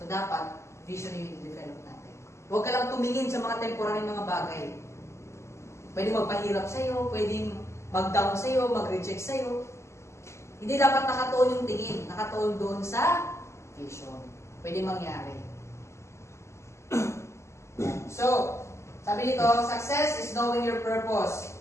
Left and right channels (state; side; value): late; right; 0.13 ms